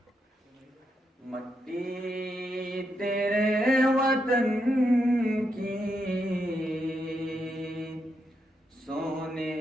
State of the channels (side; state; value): both; normal; correlation 0.82